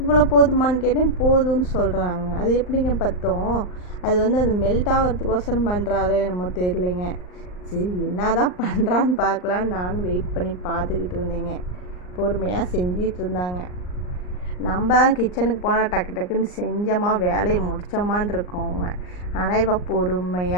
இவ்வளோ போதுமான்னு கேட்டேன். போதும்னு சொல்கிறாங்க. அது எப்படிங்க பத்தும்? அது வந்து அது மெல்ட் ஆகிறதுக்கோசரம் பண்ணுறாளோ என்னமோ தெரியலைங்க. சரி என்ன தான் பண்ணுறான்னு பார்க்கலான்னு நானும் வெயிட் பண்ணி பார்த்துக்கிட்டு இருந்தேங்க. பொறுமையாக செஞ்சிகிட்டு இருந்தாங்க. நம்ம கிச்சனுக்கு போனால் டக்கு டக்குன்னு செஞ்சோமா வேலையை முடித்தோமான் இருக்கோங்க. ஆனால் இப்போ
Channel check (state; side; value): late; right; 39 ms